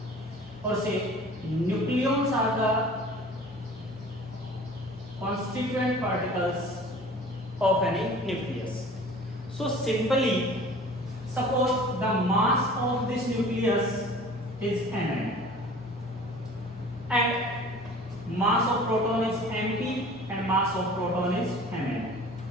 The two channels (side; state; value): both; normal; correlation 0.45